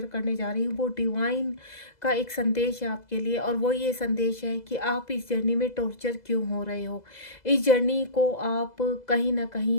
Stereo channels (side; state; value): right; late; 2.0 ms